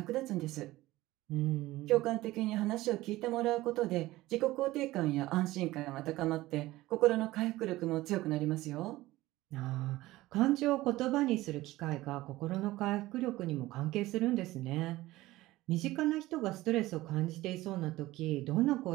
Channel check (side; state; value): left; quieter; 17.7 dB